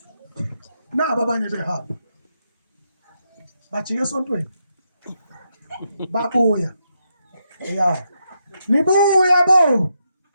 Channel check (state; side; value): inverted; both; correlation -0.82